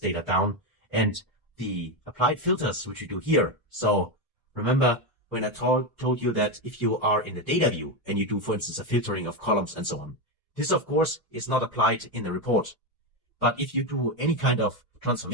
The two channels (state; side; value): normal; both; correlation 0.11